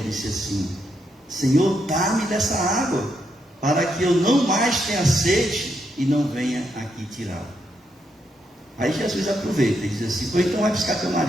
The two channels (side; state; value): both; normal; correlation 0.79